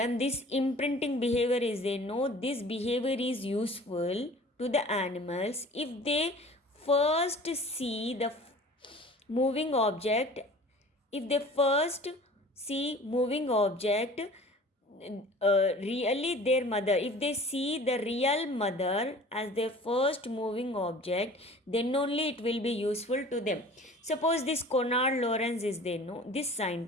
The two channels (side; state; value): both; normal; correlation 0.45